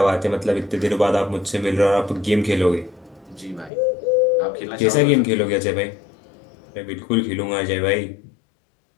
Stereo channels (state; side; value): drops out; right; at 3.7 s